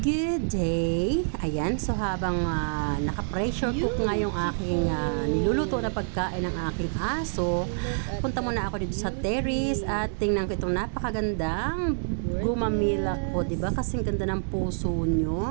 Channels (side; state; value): left; silent; digital silence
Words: day! Ayan, so habang naka-pressure cook nga yung aking niluluto na pagkain ng aking aso, punta muna ako dito sa terrace at tingnan ko itong napakagandang gumamila ko, diba? Kasing ganda ng puso